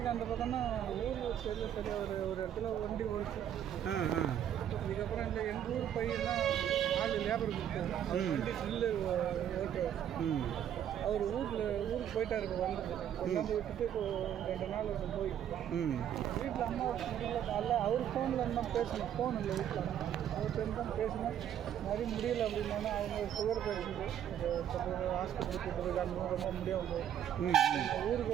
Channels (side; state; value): left; quieter; 10.0 dB